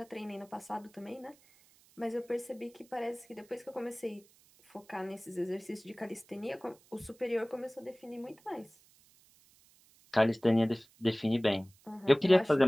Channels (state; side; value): noise; right; hiss, 29 dB below the sound